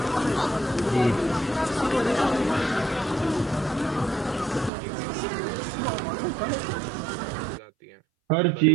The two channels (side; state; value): left; drops out; at 4.7 s